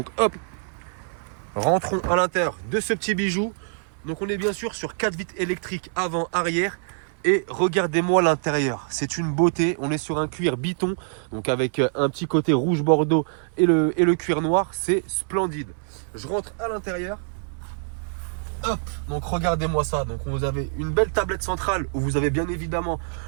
hop, rentrons à l'intérieur de ce petit bijou. Donc on est bien sûr sur 4 vitres électriques avant, arrière. Et regardez-moi l'intérieur, c'est une beauté. On est sur un cuir biton, donc avec un petit côté rouge bordeaux et le cuir noir. C'est splendide. Je rentre à l'intérieur. Hop, donc regardez-moi ça. Donc vous avez une belle tablette centrale où vous avez bien évidemment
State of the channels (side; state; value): left; silent; 62 dB below the other